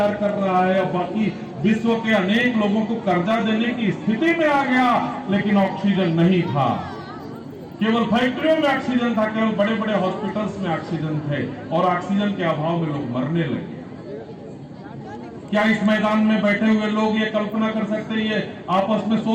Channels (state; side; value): identical; both; correlation 1.00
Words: कर रहा है, और बाकी विश्व के अनेक लोगों को कर्जा देने की स्थिति में आ गया, लेकिन ऑक्सीजन नहीं था। केवल फैक्ट्रियों में ऑक्सीजन था, केवल बड़े बड़े हॉस्पिटल्स में ऑक्सीजन थे, और ऑक्सीजन के अभाव में लोग मरने लगे। क्या इस मैदान में बैठे हुए लोग ये कल्पना कर सकते हैं, ये आपस में